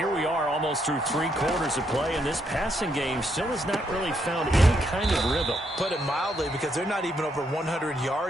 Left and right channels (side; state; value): both; normal; correlation 0.76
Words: we are almost through 3 quarters of play, and this passing game still has not really found any kind of rhythm. Put it mildly, because they're not even over 100